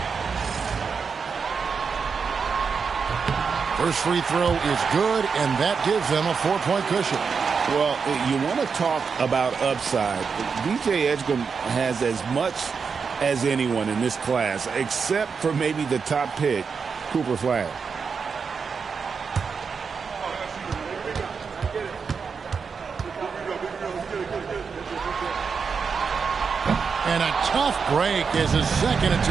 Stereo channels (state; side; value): quieter; left; 5.7 dB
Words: First free throw is good, and that gives them a 4-point cushion. Well, you want to talk about upside. DJ Edgecombe has as much as anyone in this class, except for maybe the top pick, Cooper Flag. And a tough break as his second